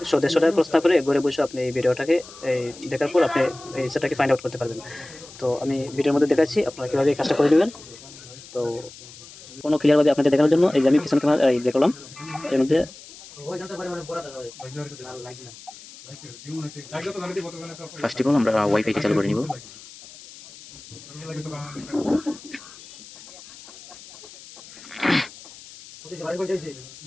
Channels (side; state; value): left; noise; hiss, 18 dB below the sound